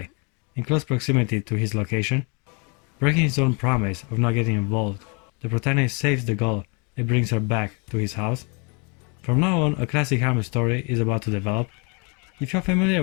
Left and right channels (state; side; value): quieter; right; 33.6 dB